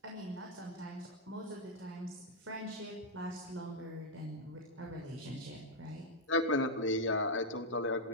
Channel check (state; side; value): normal; both; correlation -0.02